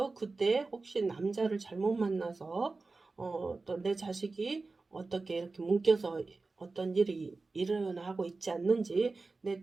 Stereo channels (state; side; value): quieter; left; 3.7 dB